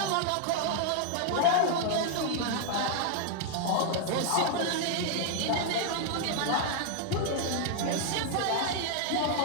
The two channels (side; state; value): both; different; correlation 0.00